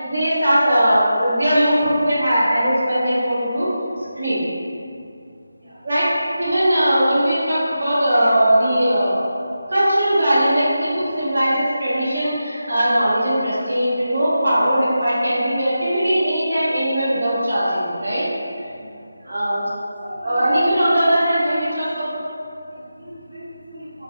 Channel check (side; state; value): both; inverted; correlation -0.91